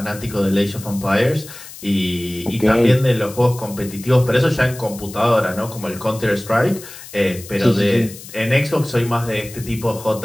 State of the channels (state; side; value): noise; left; hiss, 16 dB below the sound